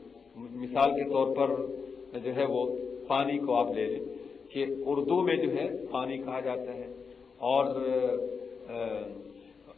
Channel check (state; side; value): quieter; right; 5.5 dB